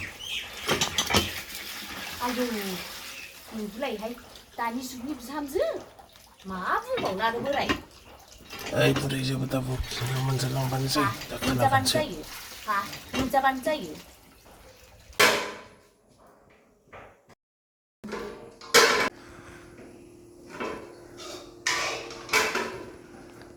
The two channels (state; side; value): identical; both; correlation 1.00